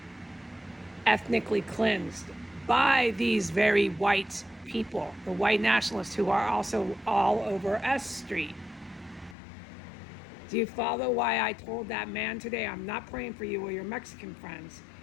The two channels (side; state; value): right; drops out; at 9.3 s